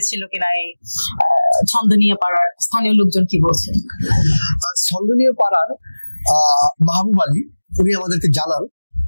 কিনা? এই ছন্দনীয় পাড়ার স্থানীয় লোকজন কি বলছেন? ছন্দনীয় পাড়ার মাহবুব আলী উনি আমাদেরকে জানান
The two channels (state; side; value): inverted; both; correlation -1.00